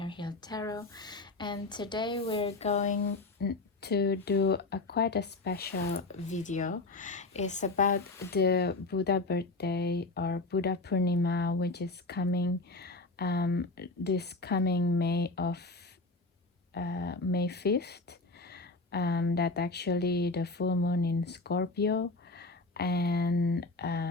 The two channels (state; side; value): quieter; right; 3.2 dB